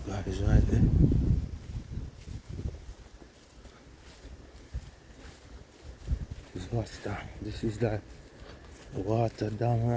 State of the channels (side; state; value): both; identical; correlation 1.00